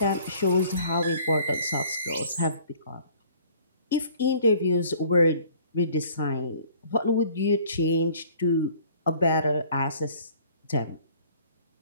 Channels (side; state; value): both; inverted; correlation -0.54